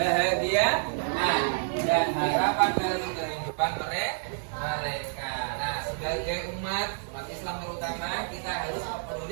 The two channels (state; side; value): silent; left; digital silence